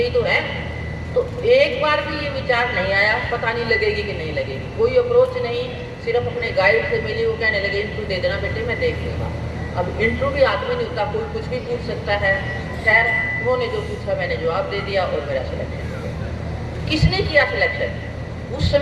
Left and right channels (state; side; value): identical; both; correlation 1.00